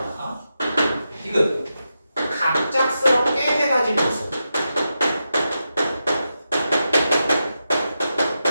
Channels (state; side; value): inverted; both; correlation -0.88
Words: 디귿 갑작스럽게 해가진 모습.